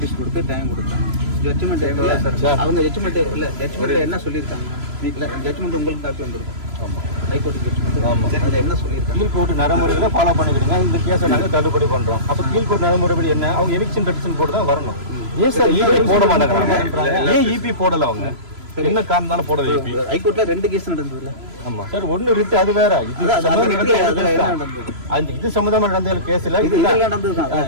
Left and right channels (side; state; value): left; late; 3.0 ms